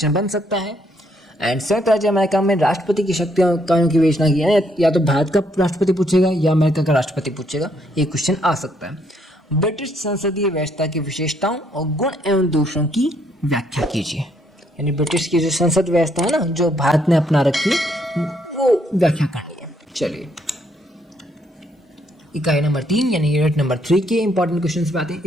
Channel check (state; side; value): normal; both; correlation 0.71